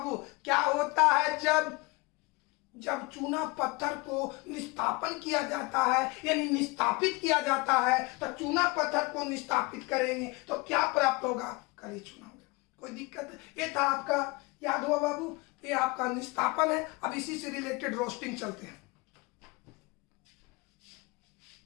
क्या होता है जब चूना पत्थर को निष्कापन किया जाता है यानी निष्कापित किया जाता है, तो चूना पत्थर को निष्कापित करेंगे तो क्या प्राप्त होगा? काली चूना। कोई दिक्कत है? ये था आपका, याद हुआ बाबू, ये आपका निष्कापन है। अब इसी से रिलेटेड रोस्टिंग चलते हैं।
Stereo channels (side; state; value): right; quieter; 25.4 dB